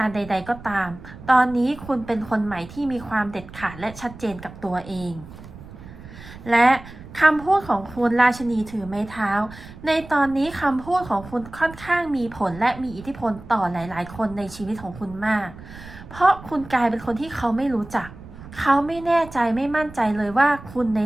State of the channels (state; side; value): noise; right; rumble, 16 dB below the sound